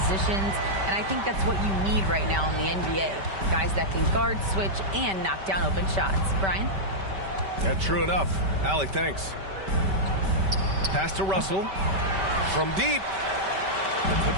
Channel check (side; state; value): left; late; 5.2 ms